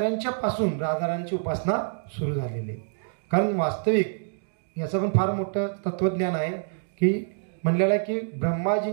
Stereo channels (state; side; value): silent; left; digital silence